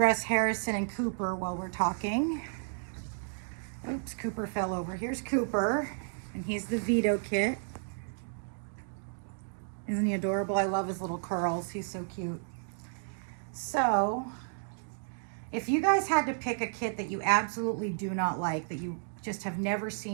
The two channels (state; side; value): silent; left; digital silence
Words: Harrison and Cooper while we're talking. Oops, Cooper fell over. Here's Cooper, and he's the Vito kit. Isn't he adorable? I love his little curls. He's so cute. So, if you guys had to pick a kit that you absolutely do not like, that you just have never